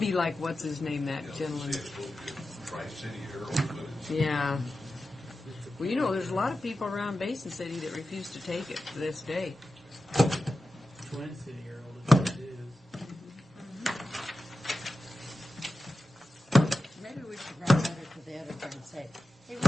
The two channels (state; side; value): normal; both; correlation 0.93